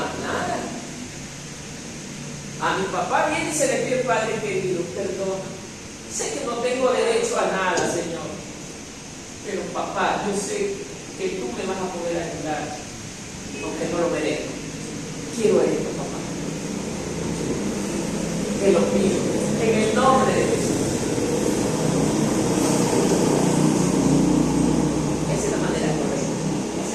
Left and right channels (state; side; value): identical; both; correlation 1.00